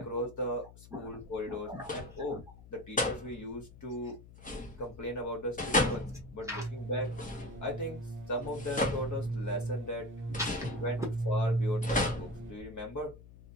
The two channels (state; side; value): noise; left; hum, 19 dB below the sound